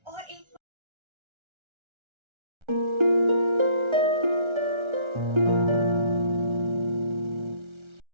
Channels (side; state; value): left; late; 1.3 ms